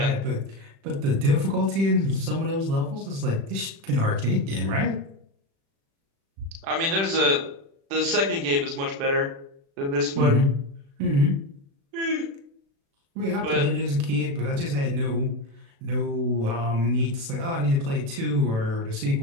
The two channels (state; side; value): late; left; 36 ms